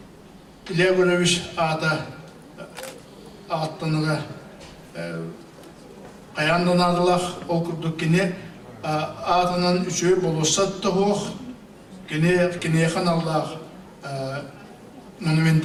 İlya Görevich ağıttanıra kayandan adılar ol kurduk yine ağıtının üçü bolosat da hoğ yine yakın Allah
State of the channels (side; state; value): both; identical; correlation 1.00